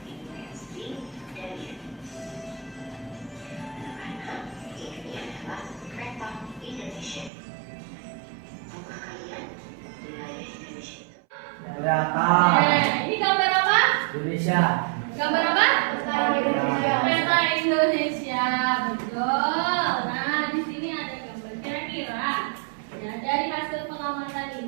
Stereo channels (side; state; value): left; drops out; at 7.3 s